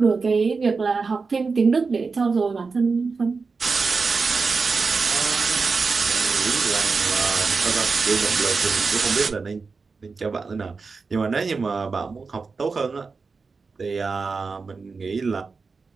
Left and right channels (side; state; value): left; quieter; 4.6 dB